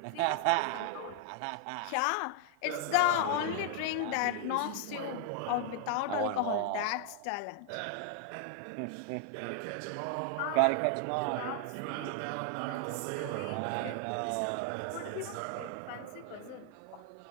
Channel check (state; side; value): different; both; correlation 0.00